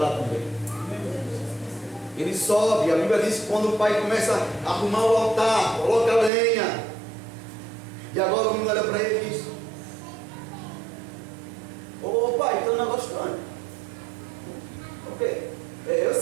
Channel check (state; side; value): drops out; left; at 6.3 s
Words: também. Ele sobe, a Bíblia diz que quando o pai começa a arrumar o altar, coloca a lenha. E agora o menino olha para ele e diz: ô pai, tem um negócio estranho. O quê? Eu